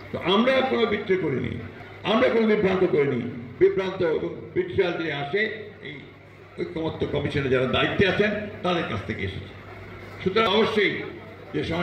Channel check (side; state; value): both; identical; correlation 1.00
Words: তো আমরা কোনো বিদ্রোহ করিনি, আমরা কোনো বিভ্রান্ত করিনি। বিভ্রান্ত এবং বিট্রিয়াল যে আসে এই ঐকমত্য কমিশনে যারা দায়িত্বে আছেন তাদের কাছ থেকে এসেছে। সুতরাং অবশ্যই যে